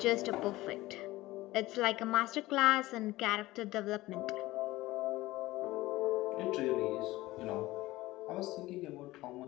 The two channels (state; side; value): quieter; right; 18.2 dB